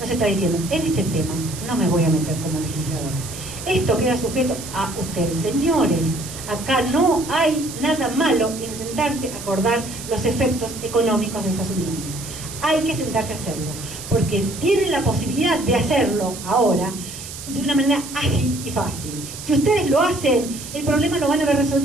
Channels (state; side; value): noise; right; hiss, 11 dB below the sound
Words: Nos está diciendo, en este tema no me voy a meter como legislador. Esto queda sujeto a ustedes, señores. Acá no hay nada malo en sentarse a acordar los efectos económicos de esas uniones. Hay que sentarse a hacerlo, porque tienen la posibilidad de hacerlo ahora de una manera ágil y fácil. Si ustedes lo hacen, el problema lo van a haber